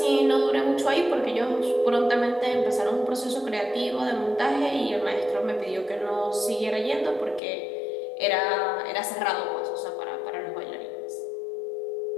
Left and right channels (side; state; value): right; drops out; at 7.4 s